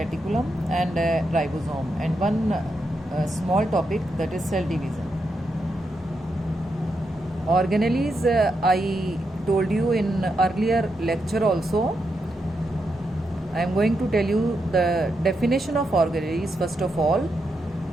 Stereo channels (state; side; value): normal; both; correlation 0.84